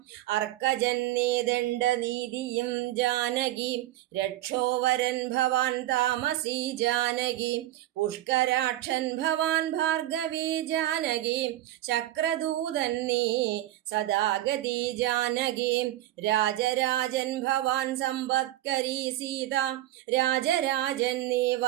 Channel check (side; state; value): left; quieter; 14.7 dB